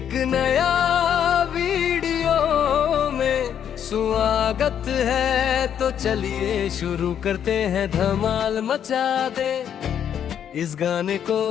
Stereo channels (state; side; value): quieter; right; 9.0 dB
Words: नया वीडियो में स्वागत है, तो चलिए शुरू करते हैं। धमाल मचा दे इस गाने को